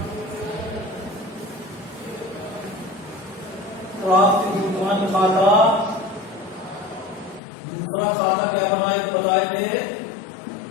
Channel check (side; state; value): right; drops out; at 7.4 s